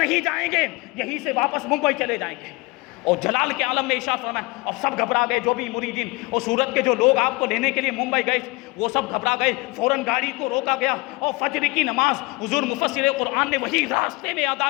جائیں گے، یہیں سے واپس ممبئی چلے جائیں گے۔ اور جلال کے عالم میں ارشاد فرمایا، اور سب گھبرا گئے، جو بھی مریدین اور سورت کے جو لوگ آپ کو لینے کے لیے ممبئی گئے وہ سب گھبرا گئے، فوراً گاڑی کو روکا گیا اور فجر کی نماز حضور مفسر قرآن نے وہی راستے میں ادا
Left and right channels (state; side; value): quieter; right; 24.8 dB